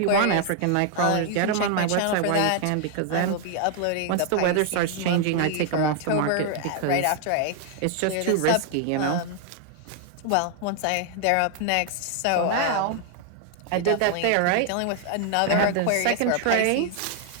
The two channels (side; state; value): both; different; correlation 0.00